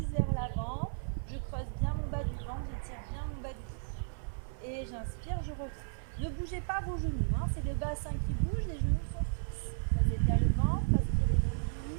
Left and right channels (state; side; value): silent; left; 55 dB below the other